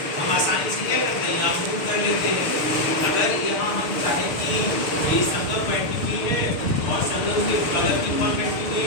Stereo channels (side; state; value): right; late; 6.7 ms